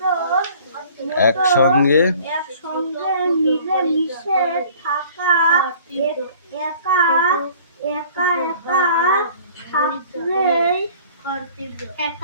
একসঙ্গে মিলেমিশে থাকা, একা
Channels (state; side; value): inverted; both; correlation -0.50